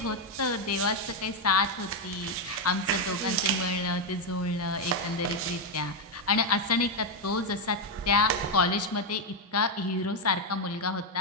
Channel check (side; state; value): both; normal; correlation 0.03